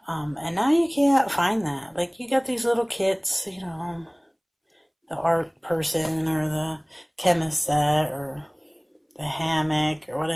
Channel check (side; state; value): both; identical; correlation 1.00